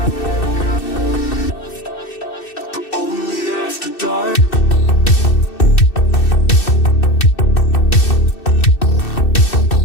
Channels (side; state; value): right; late; 2.6 ms